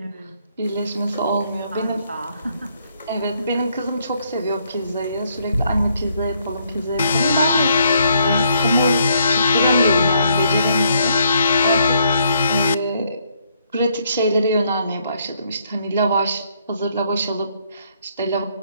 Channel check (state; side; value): inverted; both; correlation -0.71